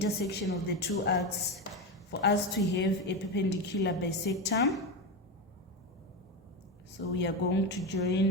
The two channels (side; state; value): both; normal; correlation 0.15